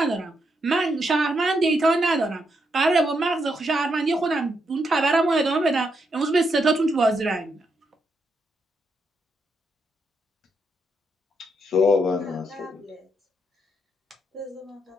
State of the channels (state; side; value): normal; both; correlation 0.80